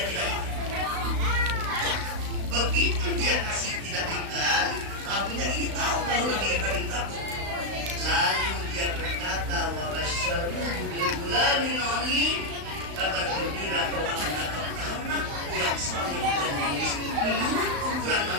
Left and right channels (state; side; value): late; left; 35 ms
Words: tidak makan. Begitu dia kasih tidak makan, tahunya ini tahu kalau Nabi Ibrahim takut. Lalu dia berkata, wa basyaruhu bil ghulamin alim. Kabar gembira kau akan dapat anak yang saleh dan manis. Menurut ukuran